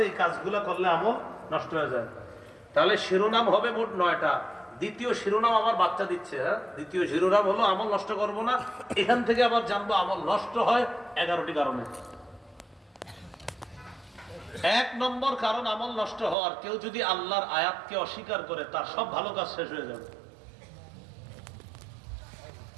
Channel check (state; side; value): drops out; left; at 16.4 s